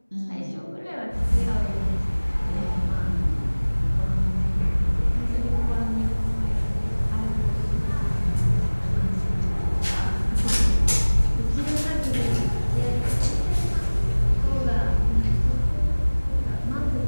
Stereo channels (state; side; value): inverted; both; correlation -1.00